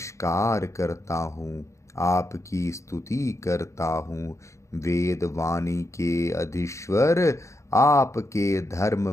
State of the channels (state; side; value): late; right; 0.14 ms